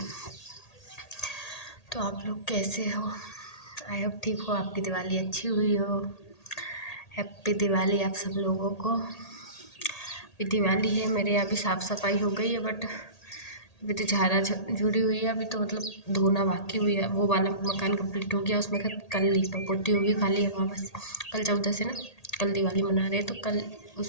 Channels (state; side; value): late; right; 1.8 ms